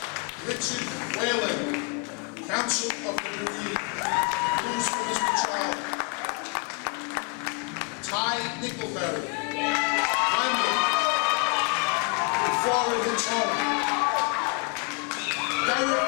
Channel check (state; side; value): quieter; right; 33.0 dB